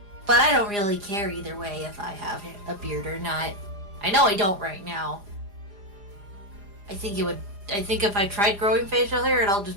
But I don't really care either way if I have a beard or not. I know I don't right now. I think if I tried growing facial hair, it'll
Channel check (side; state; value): left; late; 4.9 ms